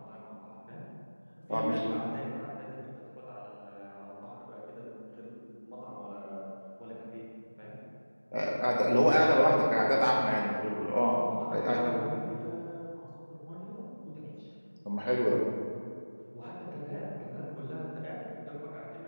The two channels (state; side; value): inverted; both; correlation -1.00